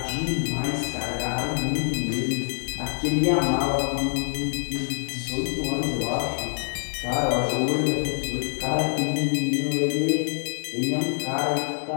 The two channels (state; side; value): silent; right; 61 dB below the other